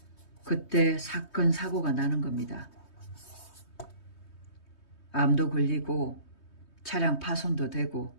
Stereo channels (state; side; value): late; right; 3.2 ms